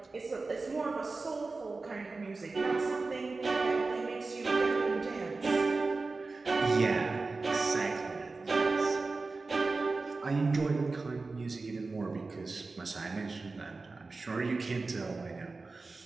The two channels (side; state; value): left; quieter; 3.7 dB